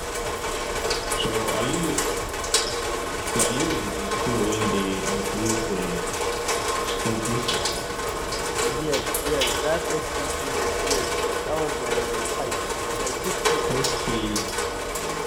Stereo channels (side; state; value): both; identical; correlation 1.00